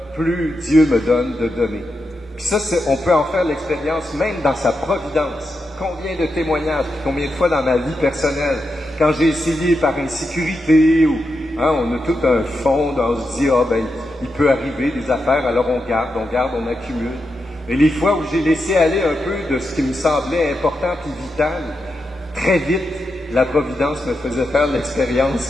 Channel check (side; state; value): both; normal; correlation 0.86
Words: plus Dieu me donne de donner. Puis ça, on peut en faire l'expérience même dans sa providence. Combien de témoignages, combien de fois dans ma vie personnelle, quand j'ai essayé par insécurité ou on a tout un fond, on se dit, il peut arriver des affaires, alors on garde, on accumule. Et les fois où j'ai laissé aller un peu de ce qui me semblait important et vital, très vite, la providence me faisait faire